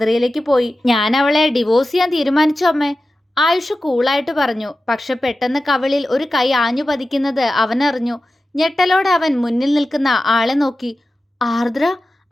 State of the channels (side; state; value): both; normal; correlation 0.94